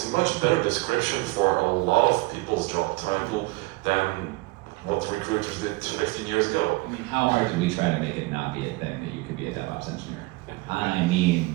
a much better description for a lot of people's job title than what recruiters did 15 years ago. I mean, how hard did we try to make it not be a thing that you could be a DevOps engineer? I mean,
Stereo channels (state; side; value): quieter; left; 23.1 dB